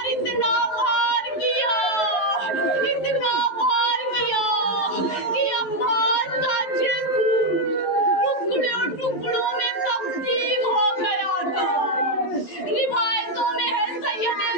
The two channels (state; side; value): late; right; 11 ms